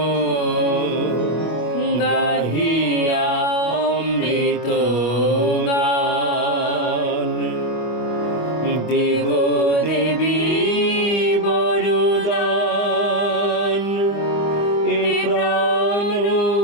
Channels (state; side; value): late; right; 25 ms